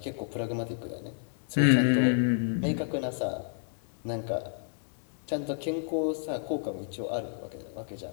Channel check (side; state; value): right; silent; 57 dB below the other